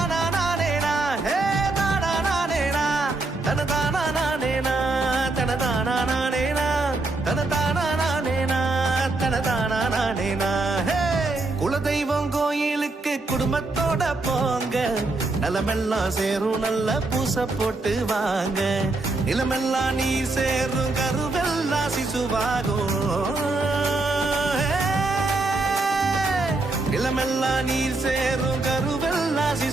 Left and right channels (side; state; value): left; quieter; 3.2 dB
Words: நானேனா ஹே தானா நானேனா தன தானா நானேனா தன தானா நானேனா தன தானா நானேனா தன தானா நானேனா ஹே குலதெய்வம் கோயிலுக்கு குடும்பத்தோட போங்க நிலமெல்லாம் சேரும் நல்ல பூச போட்டு வாங்க நிலமெல்லாம் நீ சேரும் கருவெல்லாம் சிசுவாகும் நிலமெல்லாம் நீர் சேரும் கருவெல்லாம்